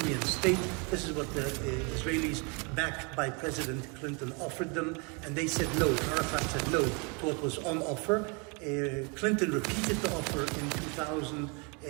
state. This is what the Israelis, backed by President Clinton, offered them, and they said no. Arafat said no to what was on offer. Clinton repeated the offer in 2000,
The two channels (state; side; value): quieter; left; 33.0 dB